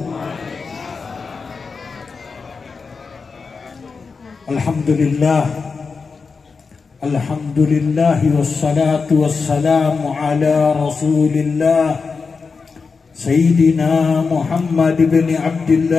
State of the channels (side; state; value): right; quieter; 4.8 dB